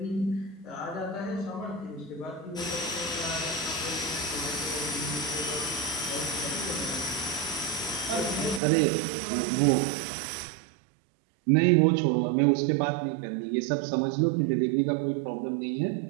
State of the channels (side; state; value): left; drops out; at 8.6 s